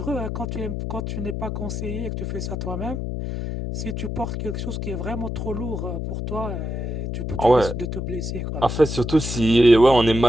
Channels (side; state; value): left; noise; hum, 4 dB below the sound